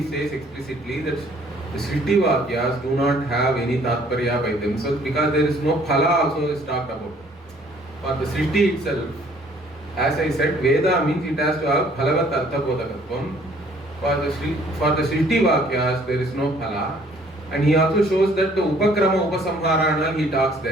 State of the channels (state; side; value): normal; both; correlation 0.59